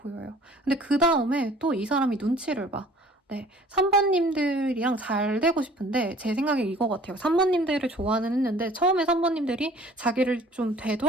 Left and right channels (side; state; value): both; normal; correlation 0.51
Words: 근데 그다음에 또 이 사람이 눈치를 봐. 네. 산모님들이랑 잘 되고 싶은데 제 생각에 이거 같아요. 산모님들을 좋아는 했는데 처음에 산모님들이 자기를 좀